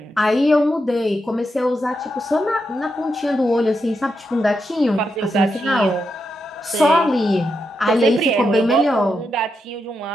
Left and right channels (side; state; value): both; normal; correlation 0.85